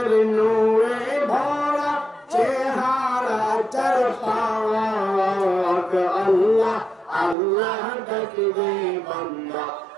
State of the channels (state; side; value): drops out; left; at 7.4 s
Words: নূরে ভরা চেহারা চার পাক আল্লাহ আল্লাহ ডাকলে বান্দা